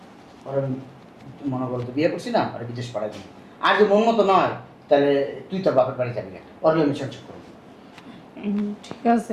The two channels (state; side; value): identical; both; correlation 1.00